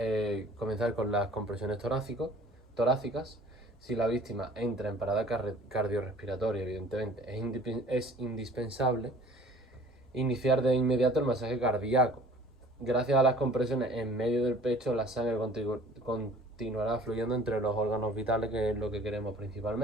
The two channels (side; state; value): both; normal; correlation 0.49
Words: comenzar con las compresiones torácicas. Si la víctima entra en parada cardiorrespiratoria, evidentemente es indispensable iniciar de inmediato el masaje cardíaco. Gracias a las compresiones en medio del pecho, la sangre continuará fluyendo entre los órganos vitales, que es lo que queremos